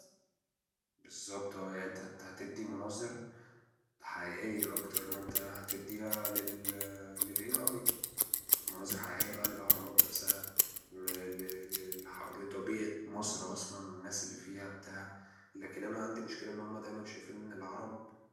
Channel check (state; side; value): identical; both; correlation 1.00